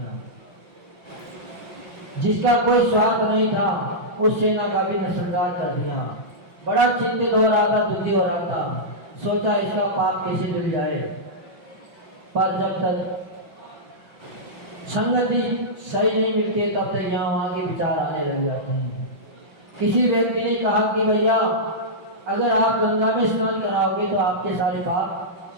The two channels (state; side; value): late; left; 5.7 ms